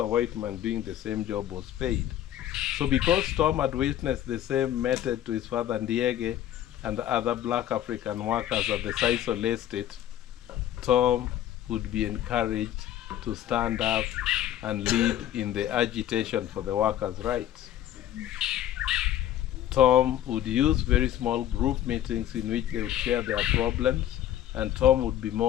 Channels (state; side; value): quieter; right; 11.9 dB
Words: white man doing the same job was paid. So because Tom had witnessed the same method to his father Ndiege and the other black African workers at the Sisal estate, Tom would be encouraged to stand up and lead in the agitation for the workers' rights. Tom would use very small group meetings in which they would share their problems, and Tom would be